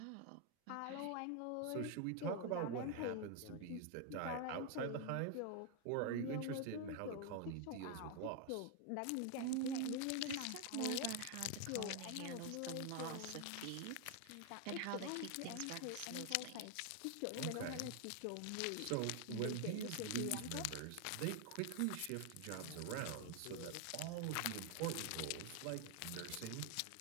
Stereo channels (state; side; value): different; both; correlation 0.01